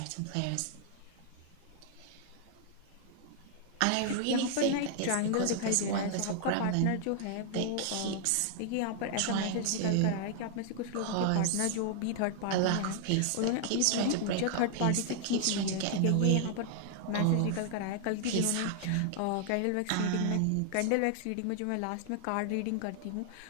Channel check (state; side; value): different; both; correlation 0.00